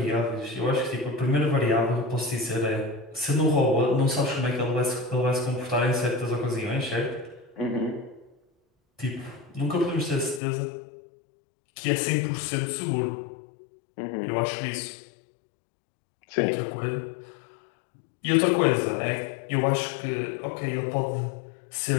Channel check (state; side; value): drops out; right; at 10.4 s